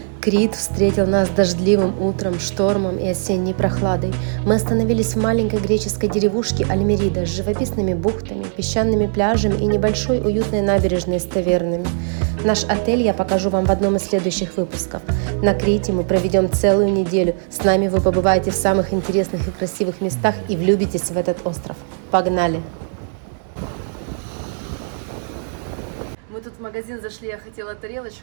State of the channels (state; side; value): silent; left; 66 dB below the other